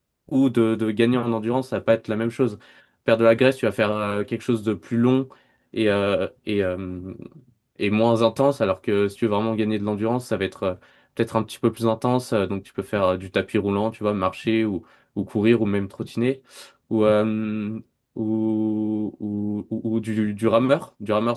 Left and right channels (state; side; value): identical; both; correlation 1.00